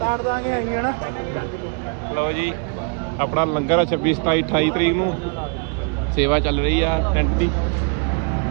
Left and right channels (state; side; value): quieter; left; 38.3 dB